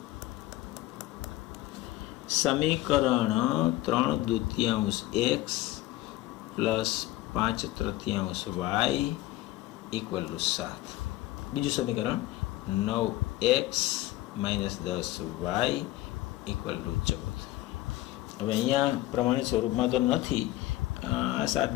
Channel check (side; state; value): right; quieter; 16.6 dB